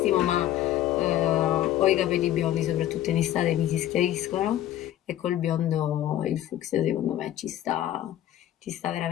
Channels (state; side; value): quieter; right; 12.6 dB